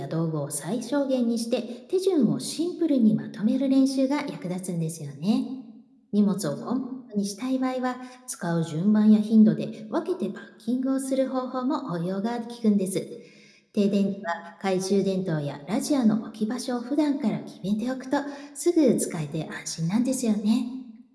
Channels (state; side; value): identical; both; correlation 1.00